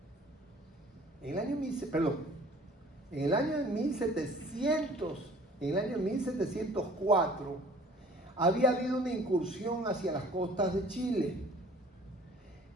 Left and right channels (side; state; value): both; normal; correlation 0.51